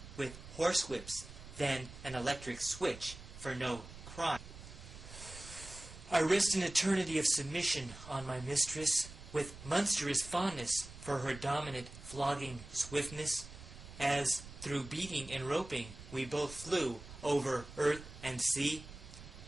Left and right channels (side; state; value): right; noise; rumble, 15 dB below the sound